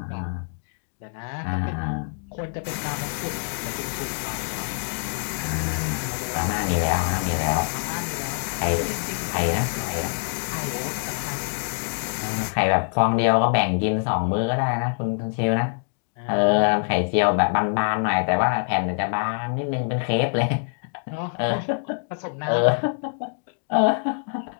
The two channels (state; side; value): silent; right; digital silence